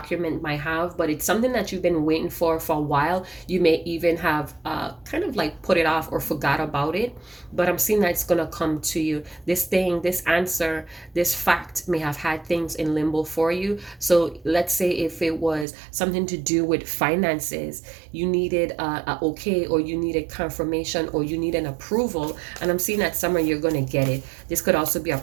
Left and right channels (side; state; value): left; drops out; at 15.7 s